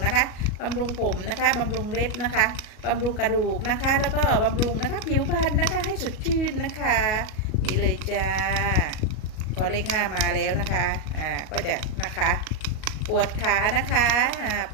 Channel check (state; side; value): late; right; 37 ms